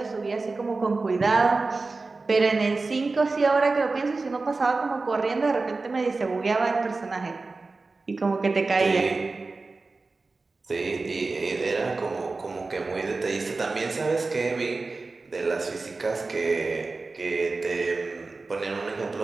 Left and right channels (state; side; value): quieter; left; 3.7 dB